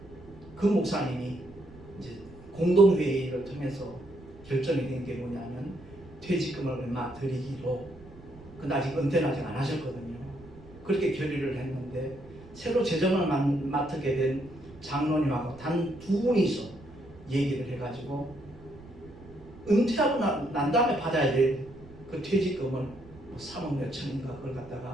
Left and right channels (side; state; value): right; noise; rumble, 20 dB below the sound